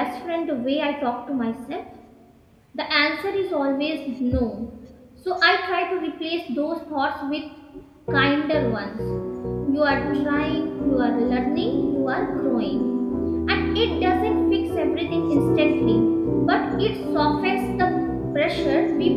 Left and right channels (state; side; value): identical; both; correlation 1.00